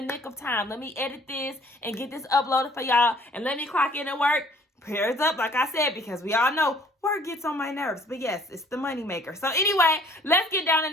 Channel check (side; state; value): both; normal; correlation 0.57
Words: nick of time. Let me edit this and get this uploaded for y'all. And let me clock in at work. Prayers up, like I said, because we all know work gets on my nerves. But yes, it's the money maker. So anyway, let's get down in